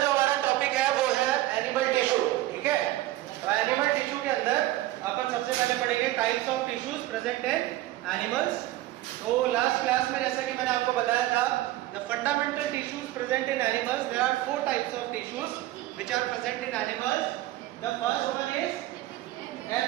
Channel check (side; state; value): left; quieter; 16.2 dB